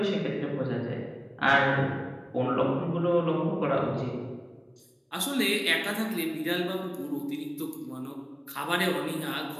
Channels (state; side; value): identical; both; correlation 1.00